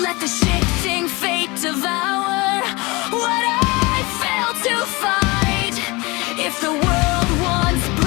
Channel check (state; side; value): quieter; right; 24.5 dB